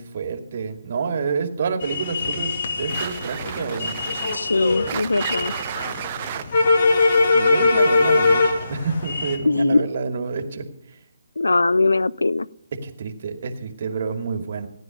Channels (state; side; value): inverted; both; correlation -0.86